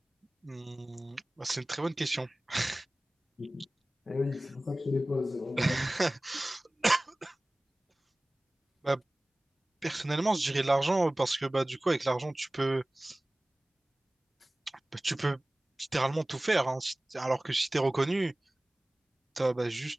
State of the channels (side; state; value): both; normal; correlation 0.98